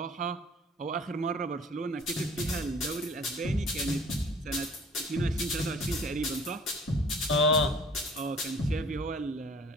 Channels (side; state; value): both; normal; correlation 0.50